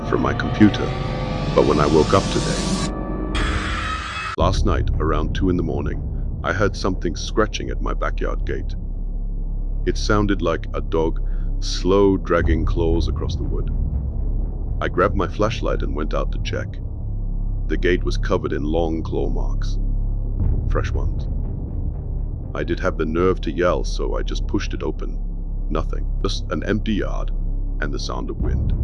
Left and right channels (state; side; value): identical; both; correlation 1.00